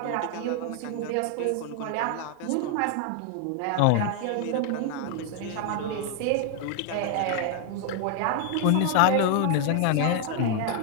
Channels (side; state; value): both; different; correlation 0.00